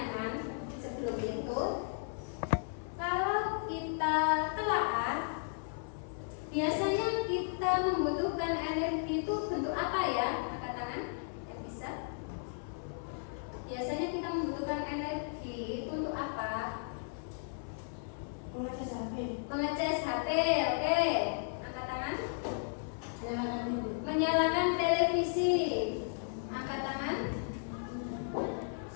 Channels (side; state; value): right; silent; 54 dB below the other